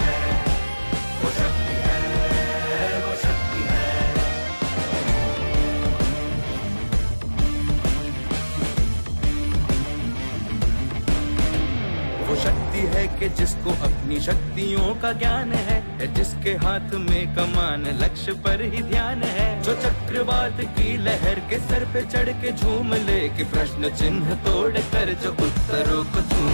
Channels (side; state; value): both; inverted; correlation -1.00